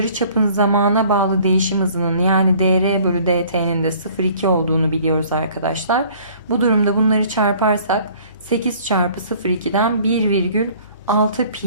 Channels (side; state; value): both; inverted; correlation -0.54